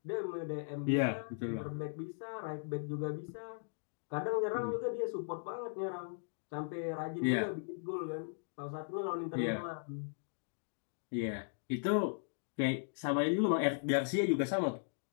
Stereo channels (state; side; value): silent; right; digital silence